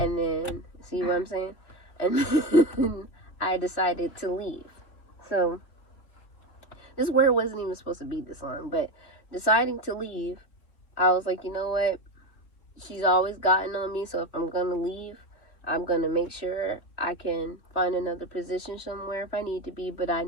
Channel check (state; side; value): late; right; 3.1 ms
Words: then, see what I'm saying? And then I decided to leave. So this word wasn't even supposed to be this long, but deciding to leave, I was like, you know what? She's always gotten on me, so if I'm going to leave, I'm going to make sure I can find another position somewhere if I need to be. But I